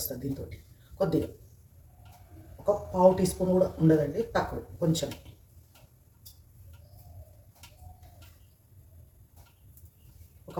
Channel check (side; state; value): both; identical; correlation 1.00